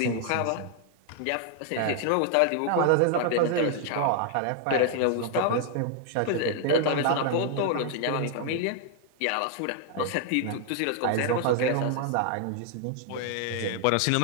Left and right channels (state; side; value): different; both; correlation 0.00